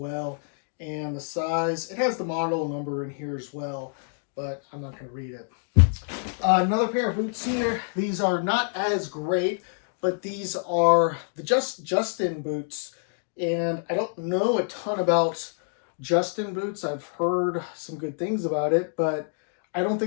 And the size, it has the model number in here as well, but I'm not going to read it. Another pair of boots here. These are not as great, but these are the Justin boots. And I don't know a ton about Justin boots. I've heard some good things about it, but I don't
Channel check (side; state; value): right; silent; digital silence